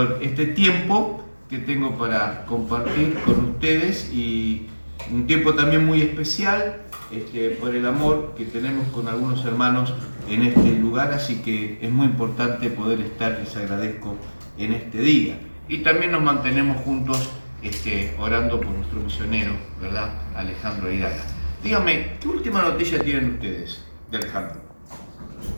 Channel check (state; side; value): inverted; both; correlation -1.00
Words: este tiempo que tengo para compartir con ustedes y un tiempo también muy especial por el amor que tenemos con algunos hermanos en este lugar, así que es muy importante poder estar, les agradezco, en este día. Y también nos mantenemos juntos orando por nuestro misionero, ¿verdad? Alejandro Ayala. Dígame, ¿qué última noticia tienen ustedes de Alejandro?